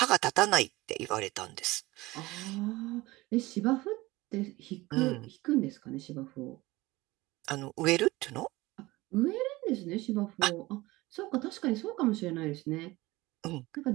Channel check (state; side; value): quieter; left; 20.1 dB